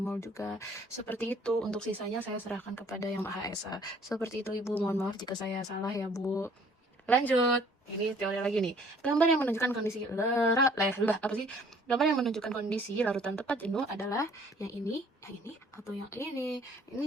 juga. Seperti itu. Untuk sisanya saya serahkan kepada yang Maha Esa. Seperti itu Ibu. Mohon maaf jika saya salah ya Bu. Lanjut. Ini teori lagi nih. Gambar yang menunjukkan kondisi Gambar yang menunjukkan kondisi larutan tepat jenuh adalah yang ini, atau yang ini. Ini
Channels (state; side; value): normal; both; correlation 0.57